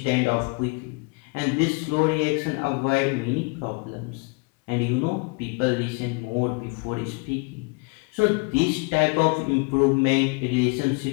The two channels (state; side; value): quieter; right; 29.2 dB